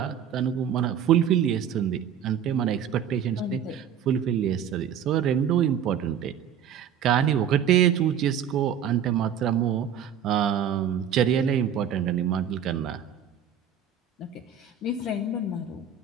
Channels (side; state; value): left; quieter; 8.3 dB